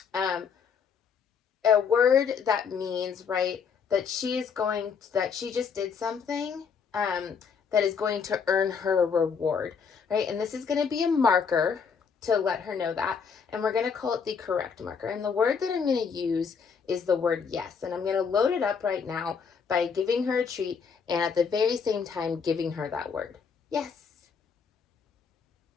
a word that means, right, that she just did something that is going to earn her a reward, right? And this is going to be a marker to let her know that. And we're going to call it the correct marker. And the word that I'm going to use is the word yes. And I'm going to load it up right now by giving her a treat and at the very same time giving her that word. Yes.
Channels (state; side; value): quieter; right; 6.1 dB